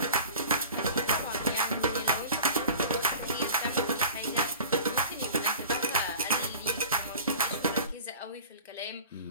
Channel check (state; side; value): inverted; both; correlation -0.41